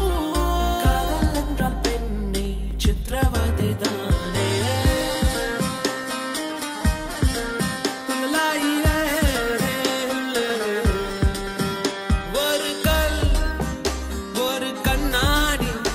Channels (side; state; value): both; identical; correlation 1.00